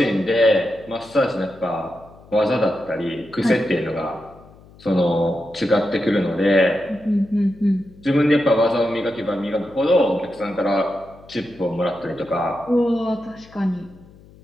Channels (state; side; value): noise; left; hum, 24 dB below the sound